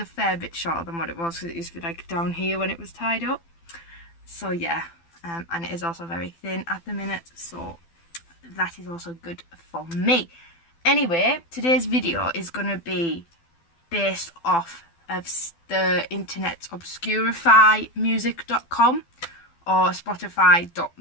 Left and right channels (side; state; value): right; late; 12 ms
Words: fair bit shorter than what it was, because it used to be like down here when it was tied up. So yeah. And it is also very thin at the minute, so that is also good for me. Anyway, today's video is going to be based off of the internet's Obscurify music.com or